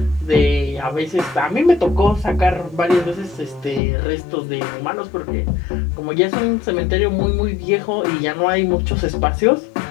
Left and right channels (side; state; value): right; drops out; at 3.8 s